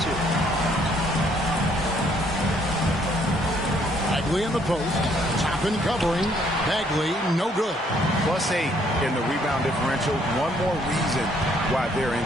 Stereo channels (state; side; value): normal; both; correlation 0.66